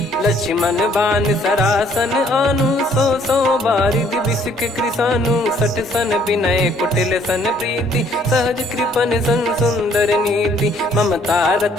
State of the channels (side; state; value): both; normal; correlation 0.63